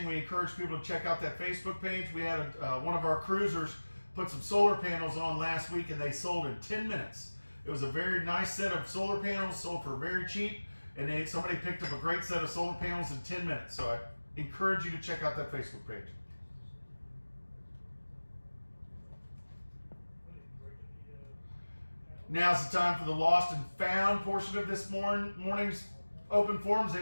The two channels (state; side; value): inverted; both; correlation -1.00